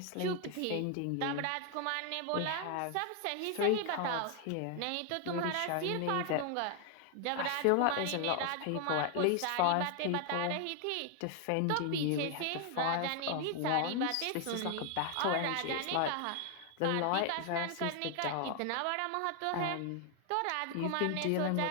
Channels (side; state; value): both; different; correlation 0.00